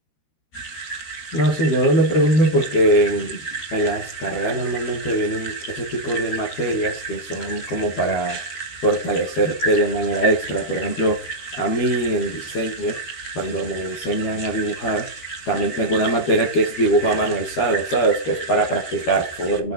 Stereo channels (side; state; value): right; late; 13 ms